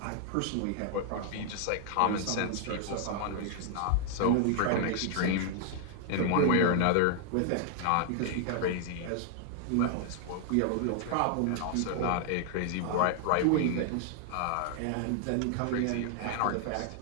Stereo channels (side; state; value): both; different; correlation 0.00